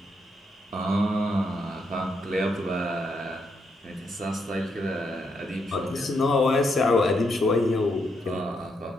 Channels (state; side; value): normal; both; correlation 0.78